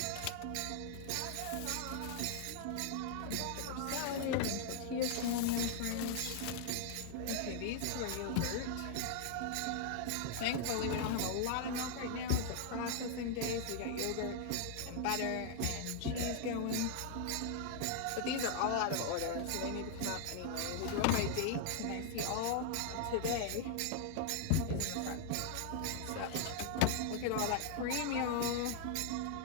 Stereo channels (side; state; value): both; different; correlation 0.00